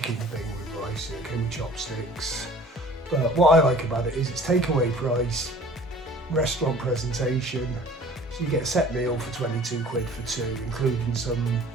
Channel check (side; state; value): both; normal; correlation 0.47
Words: thing with rice, it came with chopsticks. But what I like about it is it's takeaway price, restaurant presentation. So you get a set meal for 22 quid for 2, including some